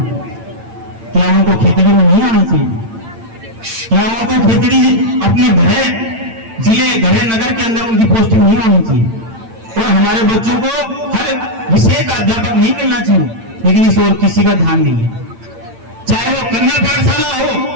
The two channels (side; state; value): left; late; 8.9 ms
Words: क्या उनको खेतड़ी में नहीं आना चाहिए? क्या उनको खेतड़ी अपने घर जिले घर नगर के अंदर उनकी पोस्टिंग नहीं आनी चाहिए? और हमारे बच्चों को हर विषय का अध्यापक नहीं मिलना चाहिए? लेकिन इस ओर किसी का ध्यान नहीं है। चाहे वो कन्या पाठशाला हो,